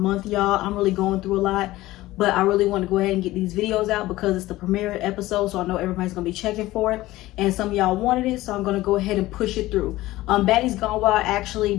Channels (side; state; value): right; quieter; 17.3 dB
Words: y'all. I'm really going through a lot. But I really want to go ahead and get these videos out because it's the premiere episode, so I know everybody's going to be checking for it. And some of y'all wanted it, so I'm going to go ahead and push it through. Baddies Gone Wild actually